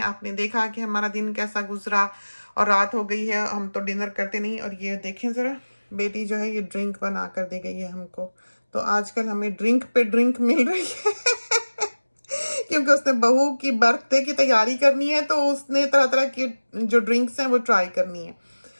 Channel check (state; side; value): inverted; both; correlation -1.00